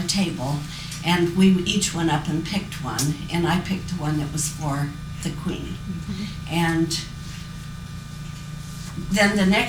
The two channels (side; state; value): both; identical; correlation 1.00